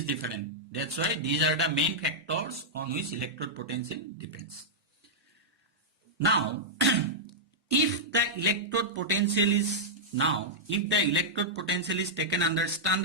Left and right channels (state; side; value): normal; both; correlation -0.08